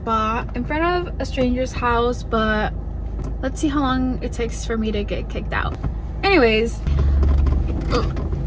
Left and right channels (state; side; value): identical; both; correlation 1.00